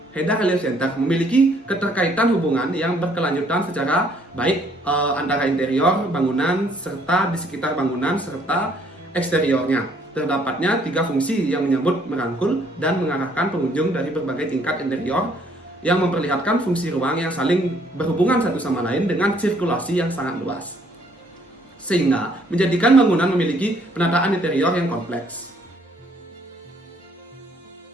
Heda Relief Center memiliki keterkaitan hubungan yang berkelanjutan secara baik antara interior bangunan serta di sekitar bangunan serta eksteriornya. Terdapatnya 3 fungsi yang menyambut, merangkul, dan mengarahkan pengunjung dari berbagai tingkat interior yang memperlihatkan fungsi ruang yang saling berhubungan satu sama lain dengan sirkulasi yang sangat luas. Sehingga menjadikan bangunan memiliki penataan interior yang kompleks.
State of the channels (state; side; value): normal; both; correlation 0.64